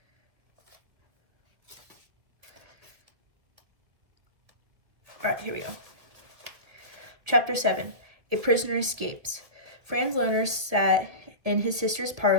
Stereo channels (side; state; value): left; late; 1.9 ms